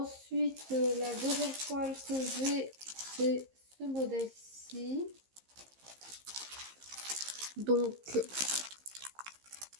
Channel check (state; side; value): late; left; 15 ms